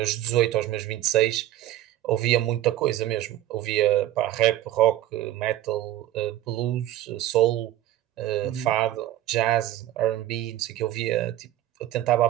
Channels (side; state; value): left; quieter; 13.6 dB